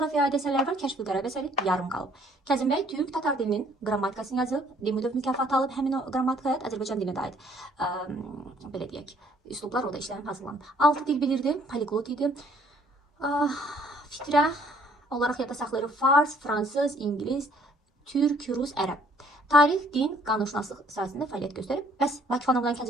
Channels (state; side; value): normal; both; correlation 0.61